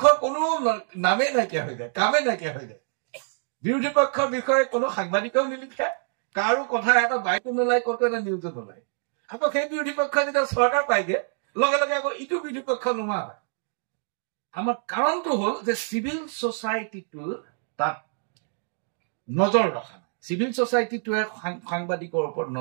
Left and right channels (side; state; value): left; silent; digital silence